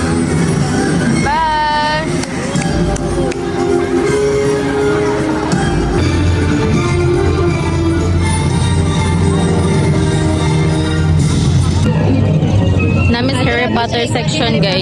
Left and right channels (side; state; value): both; identical; correlation 1.00